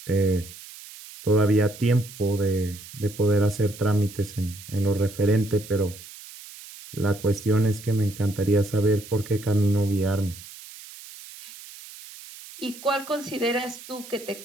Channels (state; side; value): noise; right; hiss, 16 dB below the sound